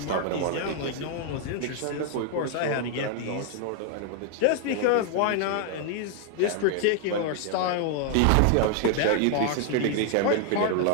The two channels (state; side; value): different; both; correlation 0.00